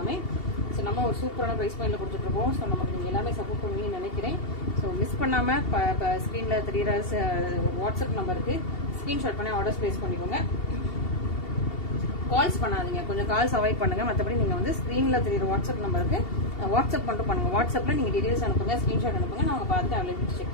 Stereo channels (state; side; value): late; right; 2.7 ms